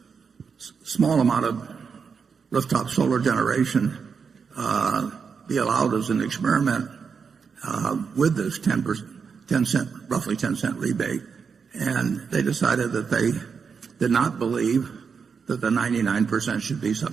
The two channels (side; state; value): left; quieter; 5.9 dB